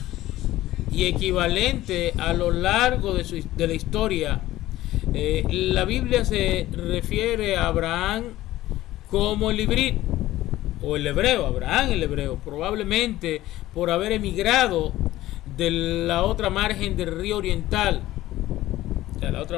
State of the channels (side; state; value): right; quieter; 15.6 dB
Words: y equivalente a lo largo de la historia. La Biblia se refiere a Abraham como el ibrit o el hebreo, Abraham el hebreo, probablemente por haber emigrado de la otra margen del río oriental, o sea, la